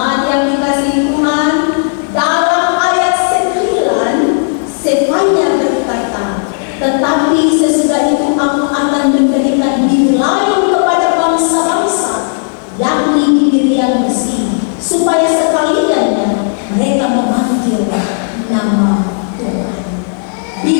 yang dikasihi Tuhan, dalam ayat 9 Sefanya berkata, tetapi sesudah itu aku akan memberikan bibir lain kepada bangsa-bangsa, yakni bibir yang bersih, supaya sekaliannya mereka memanggil nama Tuhan.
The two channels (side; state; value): right; silent; digital silence